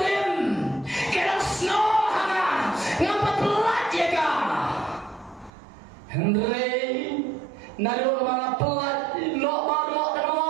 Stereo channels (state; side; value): drops out; left; at 5.5 s